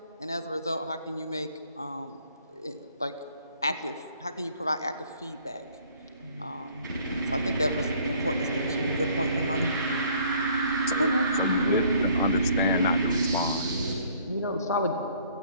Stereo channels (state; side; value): inverted; both; correlation -0.59